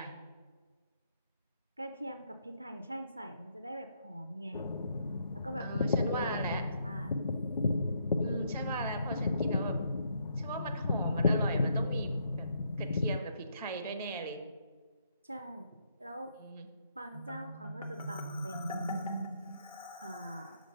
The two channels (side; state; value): both; inverted; correlation -0.73